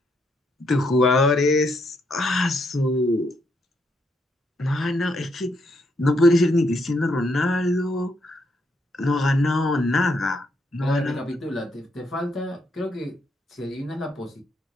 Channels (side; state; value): both; normal; correlation 0.76